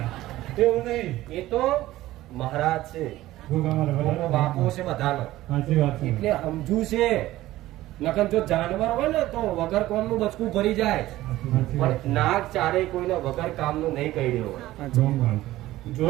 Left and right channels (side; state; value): left; quieter; 16.0 dB